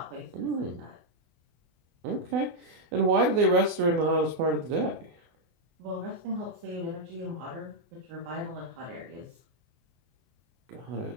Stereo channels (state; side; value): late; left; 24 ms